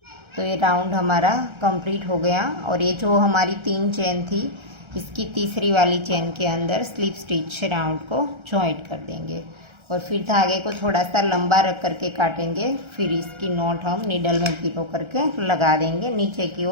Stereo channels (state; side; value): late; left; 1.3 ms